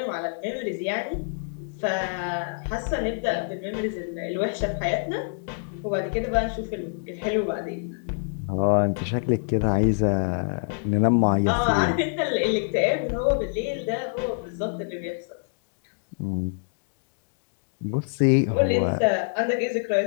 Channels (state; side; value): silent; right; digital silence